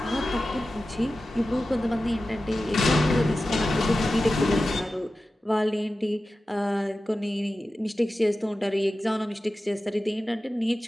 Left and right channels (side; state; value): both; normal; correlation 0.94